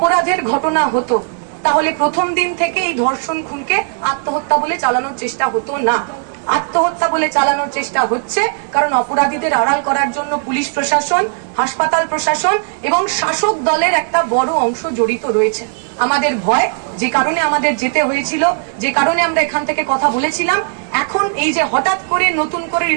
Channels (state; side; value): silent; left; digital silence